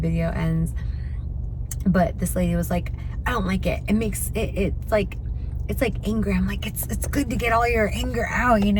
ends. But this lady was like, I don't like it. It makes it's like anger. I'm like, it's good to get all your anger out, you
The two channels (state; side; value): identical; both; correlation 1.00